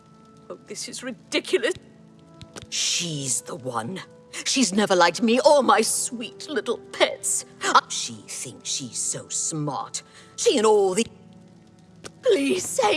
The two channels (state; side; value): identical; both; correlation 1.00